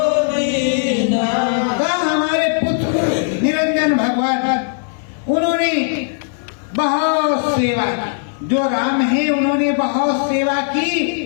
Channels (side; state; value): right; silent; 67 dB below the other